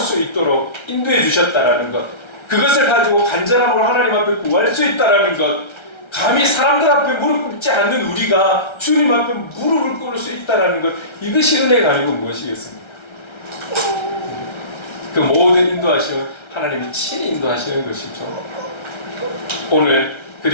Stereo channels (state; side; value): late; right; 1.3 ms